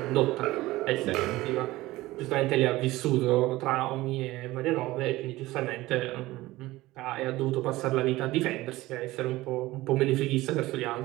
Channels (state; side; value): quieter; left; 18.2 dB